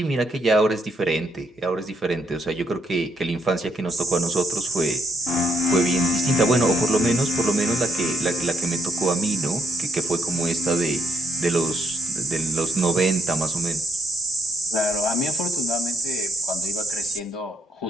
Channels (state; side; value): normal; both; correlation 0.74